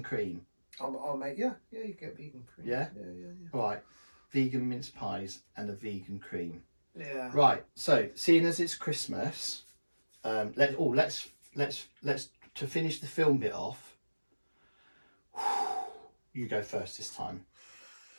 cream. I'll make you can get vegan cream. Yeah? Yeah. Right. Vegan mince pies and a vegan cream. Yeah. Right. So, seeing as it's Christmas, let's to finish the film bit off. You go first this time.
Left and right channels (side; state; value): both; inverted; correlation -1.00